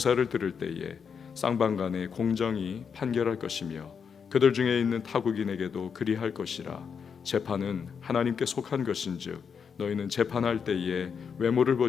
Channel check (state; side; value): quieter; right; 6.5 dB